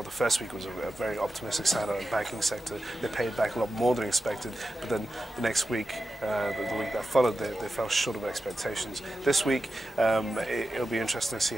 the first week was a very optimistic sign out of the banking sector. They paid back a lot more than expected, but then the next week, the week that followed, they fell short of expectations. This week, it'll be interesting to see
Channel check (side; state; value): both; normal; correlation 0.92